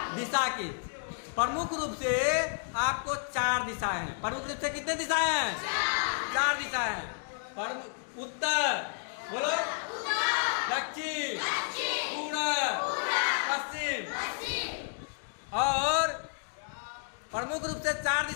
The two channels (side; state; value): right; silent; digital silence